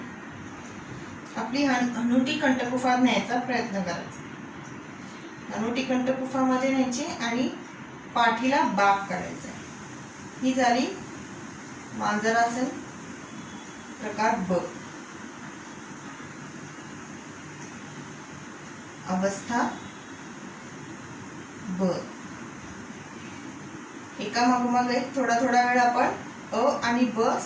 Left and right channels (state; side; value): identical; both; correlation 1.00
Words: आपली हनुटी कंठकुफात न्यायचा प्रयत्न करायचा. हनुटी कंठकुफामध्ये न्यायची आणि पाठीला बाक करायचा. ही झाली मांजरासन प्रकार ब. अवस्था ब. एका मागोमाग एक थोडा वेळ आपण अ आणि ब